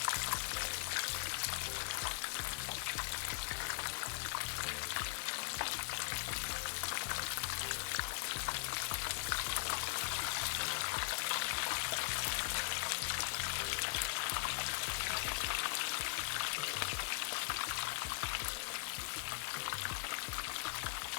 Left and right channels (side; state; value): right; silent; 51 dB below the other